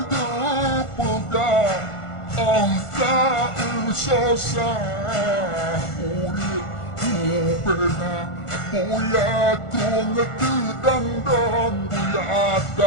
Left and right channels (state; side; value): late; right; 1.4 ms